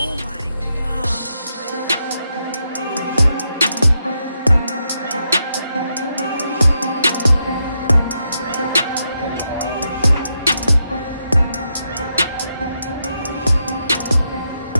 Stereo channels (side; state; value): both; inverted; correlation -0.83